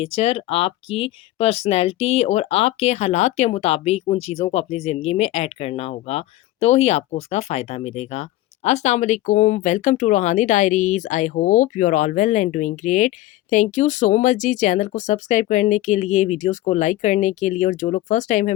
आपकी पर्सनैलिटी और आपके हालात के मुताबिक उन चीज़ों को अपनी ज़िंदगी में ऐड करना होगा, तो ही आपको उसका फ़ायदा मिलेगा। अस्सलाम वालेकुम, welcome to Roohani diaries. I hope you are all well and doing great. Thank you so much जी चैनल को सब्सक्राइब करने के लिए, वीडियोज़ को लाइक करने के लिए और जो लोग फर्स्ट टाइम है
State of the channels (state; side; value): quieter; right; 16.0 dB